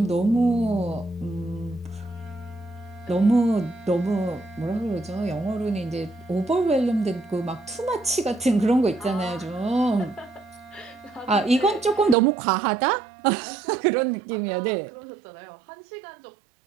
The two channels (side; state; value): left; drops out; at 12.2 s